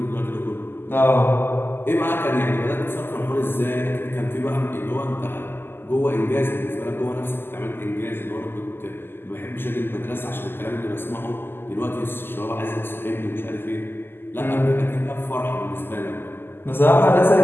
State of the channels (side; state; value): right; late; 0.10 ms